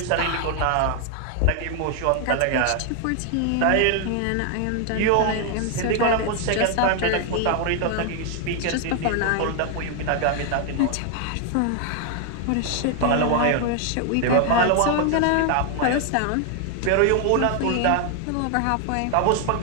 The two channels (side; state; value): both; different; correlation 0.00